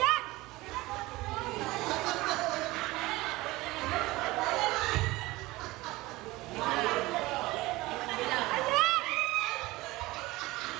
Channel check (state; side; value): quieter; left; 20.0 dB